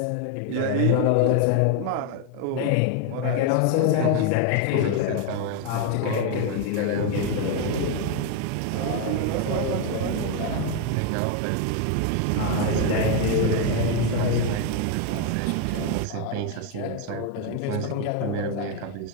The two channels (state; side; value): different; both; correlation 0.01